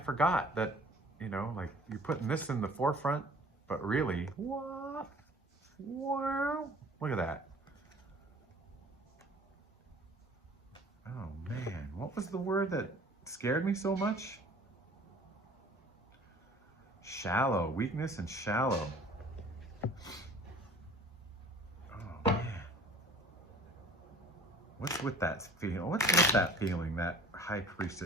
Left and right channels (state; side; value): normal; both; correlation 0.47